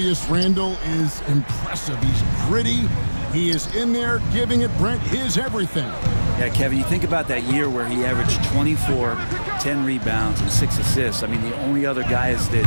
Randle is impressive. He's gritty. He is in there giving it, Brent, his everything. Yeah, Kevin, you think about that year where he averaged 24, 10 rebounds, and 6 assists. I mean, the only other guys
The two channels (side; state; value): both; inverted; correlation -1.00